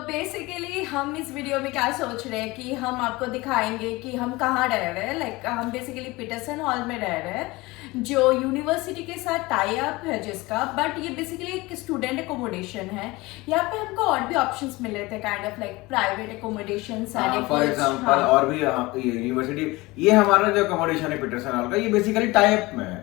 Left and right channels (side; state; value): right; quieter; 21.7 dB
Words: बेसिकली हम इस वीडियो में क्या सोच रहे हैं कि हम आपको दिखाएंगे कि हम कहाँ रह रहे हैं। लाइक हम बेसिकली पीटरसन हॉल में रह रहे हैं जो यूनिवर्सिटी के साथ टाई अप है जिसका, बट ये बेसिकली एक स्टूडेंट एकोमोडेशन है। यहाँ पे हमको और भी ऑप्शंस मिले थे, kind of like private accommodation. For example और भी ये यूनिवर्सिटी, ये हमारा जो अकोमोडेशन है पीटरसन हॉल का, ये बेसिकली टाई अप में है।